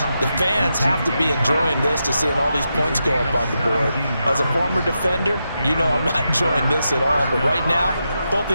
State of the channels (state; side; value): inverted; both; correlation -0.86